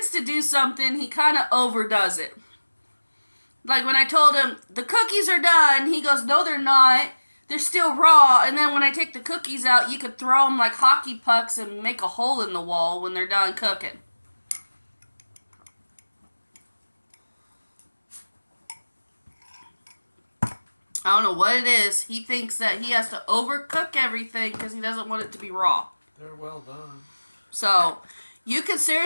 to do something, he kind of overdoes it. Like when I told him, the cookies are done, he goes, no, they're not. They're still raw. And then when I take the cookies out, you could throw them like hockey pucks and make a hole in the wall when they're done cooking. I don't know what it is. He thinks that he has to overcook everything because he doesn't want it to be raw. They're well done. So, you could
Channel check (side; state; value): both; inverted; correlation -1.00